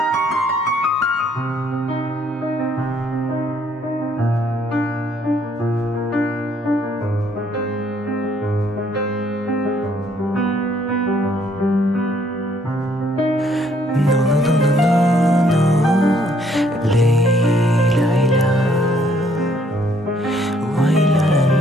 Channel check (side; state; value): both; normal; correlation 0.66